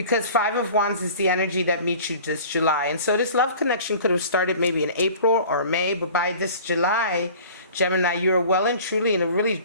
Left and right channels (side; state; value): both; inverted; correlation -0.44